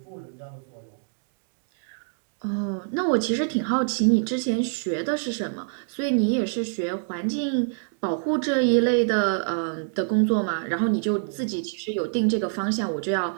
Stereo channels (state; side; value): silent; left; digital silence